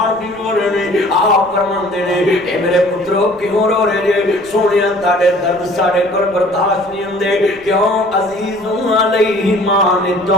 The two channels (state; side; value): noise; right; rumble, 24 dB below the sound